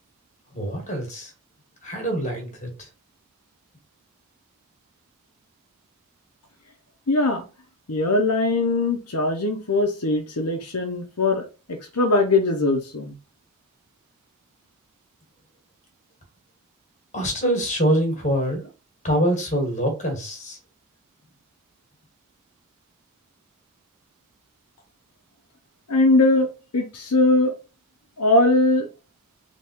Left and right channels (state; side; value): normal; both; correlation 0.11